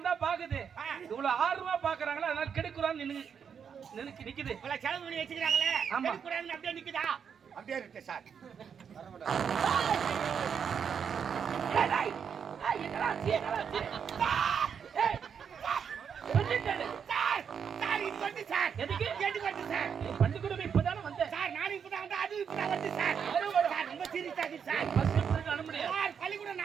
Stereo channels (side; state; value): left; quieter; 7.2 dB